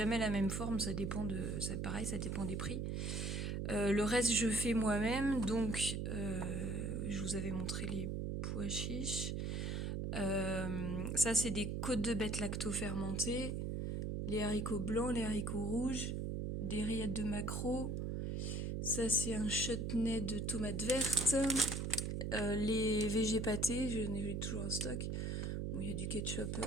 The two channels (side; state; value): right; noise; hum, 1 dB below the sound